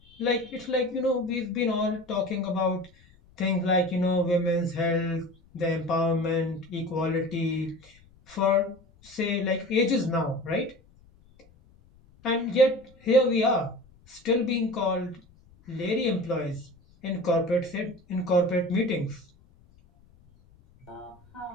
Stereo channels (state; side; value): noise; left; rumble, 28 dB below the sound